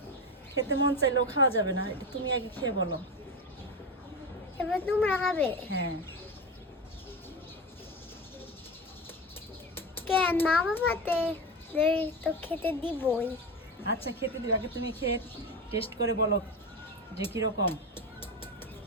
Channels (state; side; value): normal; both; correlation 0.21